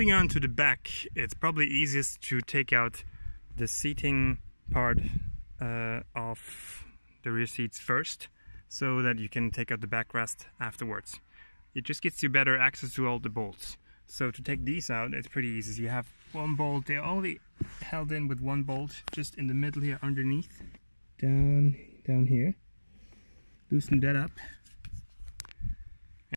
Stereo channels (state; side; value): inverted; both; correlation -1.00